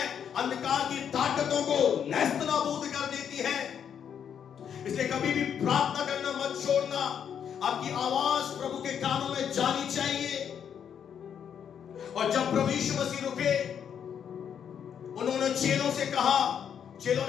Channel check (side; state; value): right; quieter; 8.2 dB